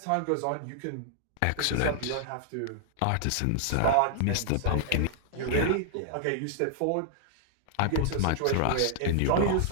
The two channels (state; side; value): different; both; correlation -0.01